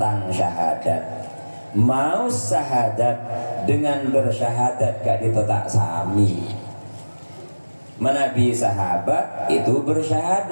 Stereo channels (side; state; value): both; inverted; correlation -1.00